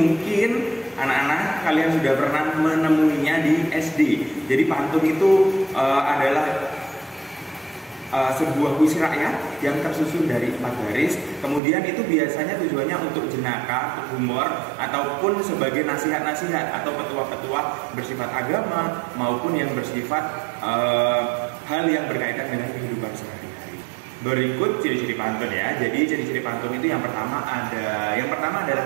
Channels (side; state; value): left; drops out; at 11.6 s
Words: anak-anak kalian sudah pernah menemuinya di SD. Jadi pantun itu adalah sebuah puisi rakyat yang tersusun dari 4 baris. Kemudian itu biasanya tujuannya untuk jenaka, untuk humor, ataupun sebagai nasihat-nasihat atau petua-petua bersifat agama maupun yang bersifat hal yang berkaitan dengan kehidupan sehari-hari. Berikut ciri-ciri pantun ya. Jadi ciri-ciri pantun itu yang pertama